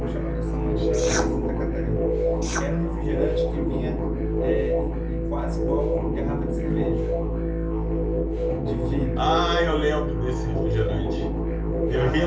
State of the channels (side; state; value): both; identical; correlation 1.00